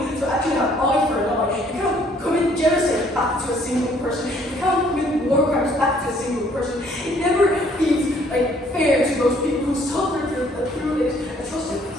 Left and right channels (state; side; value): normal; both; correlation 0.62